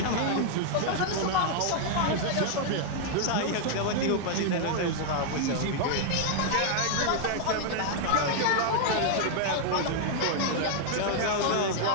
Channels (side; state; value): both; different; correlation 0.00